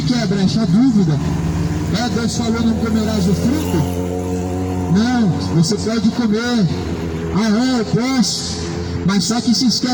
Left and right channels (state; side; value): identical; both; correlation 1.00